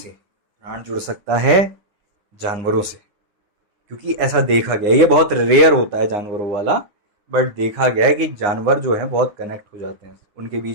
प्राण जुड़ सकता है जानवरों से, क्योंकि ऐसा देखा गया। ये बहुत रेयर होता है जानवरों वाला, बट देखा गया है कि जानवर जो है बहुत कनेक्ट हो जाते हैं, उनके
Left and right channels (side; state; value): left; late; 9.7 ms